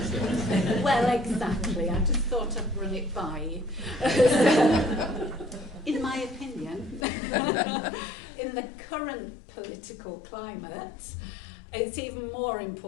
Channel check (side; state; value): right; drops out; at 7.1 s